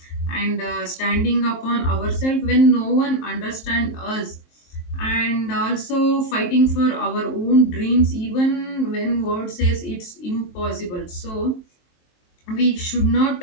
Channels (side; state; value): right; late; 23 ms